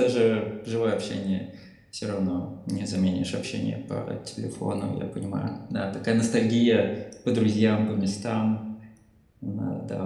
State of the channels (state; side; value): identical; both; correlation 1.00